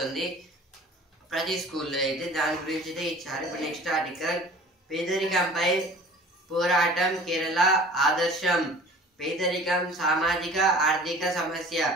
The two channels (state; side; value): normal; both; correlation 0.45